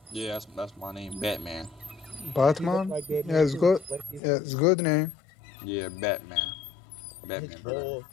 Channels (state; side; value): drops out; right; at 4.2 s